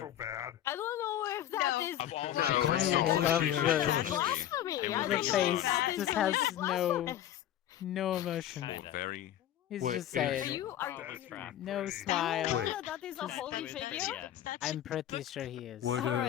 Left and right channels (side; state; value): right; quieter; 11.8 dB